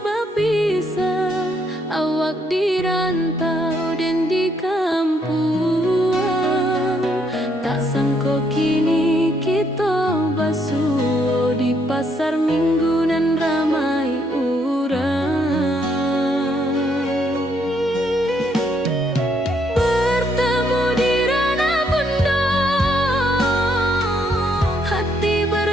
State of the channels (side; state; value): both; normal; correlation 0.72